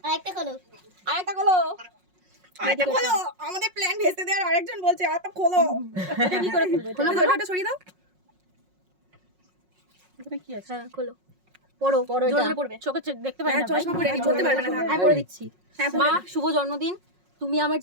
আরেকটা খোলো। আরেকটা খোলো আমাদের প্ল্যান ভেস্তে দেওয়ার আরেকজন বলছে আরেকটা খোলো এটা কি করে খুলবে খোলো ওটা সরিয়ে দাও এখানে কি আছে হ্যাঁ খোলো। পড়ো পড়ো জোরে এটা। জোরে পড়বে। চোখে দেখতে পাই না চশমা পরে বলতে পারবে না আমি পড়ে দিচ্ছি। হ্যাঁ মা শুভ জন্মদিন। তুমি আমার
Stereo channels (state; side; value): late; left; 5.5 ms